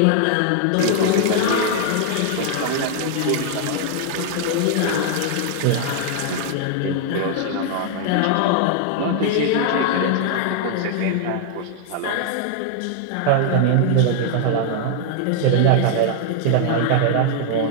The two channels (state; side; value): different; both; correlation 0.00